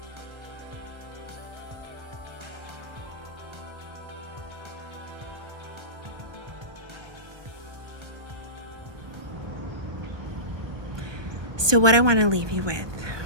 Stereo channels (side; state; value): left; late; 1.5 ms